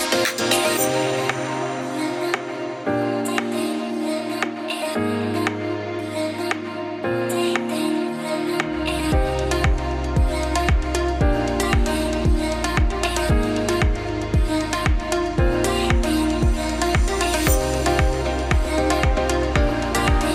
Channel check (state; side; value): identical; both; correlation 1.00